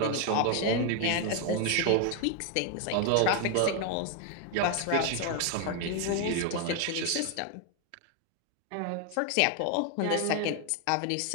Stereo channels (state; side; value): different; both; correlation 0.01